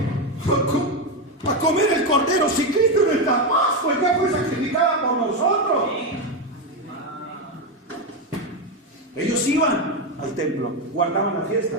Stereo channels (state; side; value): normal; both; correlation 0.10